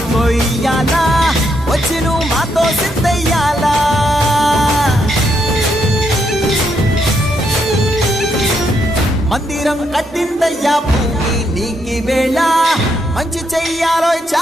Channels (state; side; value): normal; both; correlation 0.77